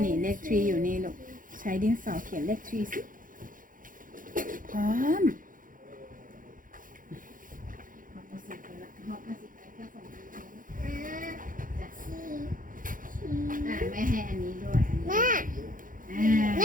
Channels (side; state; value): left; late; 0.39 ms